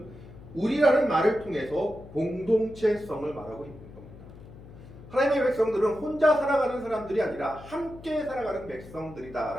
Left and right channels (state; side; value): noise; left; hum, 18 dB below the sound